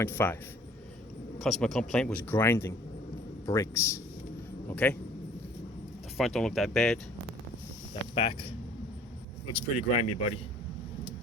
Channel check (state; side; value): normal; both; correlation 0.53